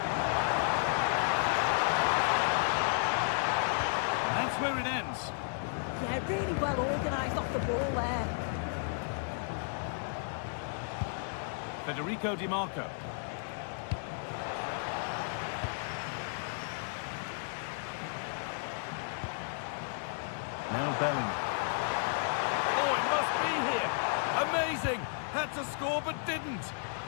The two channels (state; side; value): silent; right; digital silence